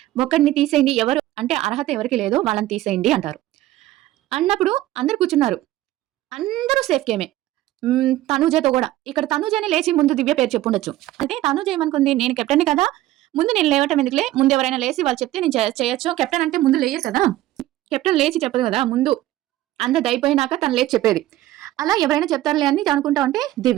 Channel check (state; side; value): quieter; left; 15.3 dB